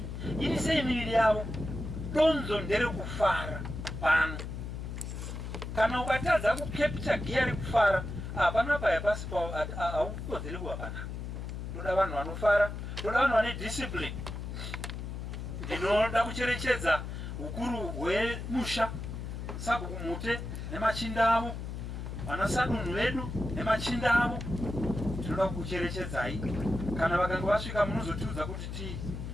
ini sei miviri yavo. Donzo ndere kufara pano. Kana ukatadza kukepcha giya rekufara, hapana paya pasi haukodzeri kuva panapa. Toda vanhu vanofara, toda vanhu vane discipline. Ndinoda kucherechedza ukuru hwemusha, sabhuku mute nemachinda avo, vanasadunhu vedu nemachinda avo. Tinoda kucherechedzai. Kana vakanga vasvika munozotiudza kuti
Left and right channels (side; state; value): left; noise; hum, 6 dB below the sound